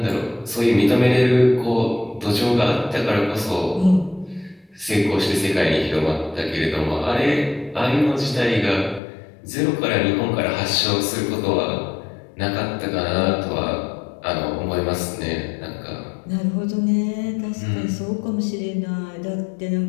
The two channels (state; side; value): drops out; right; at 9.0 s